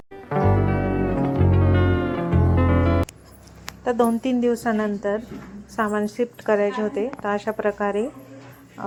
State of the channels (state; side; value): identical; both; correlation 1.00